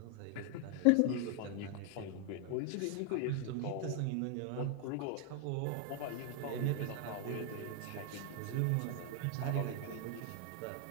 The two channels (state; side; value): different; both; correlation 0.00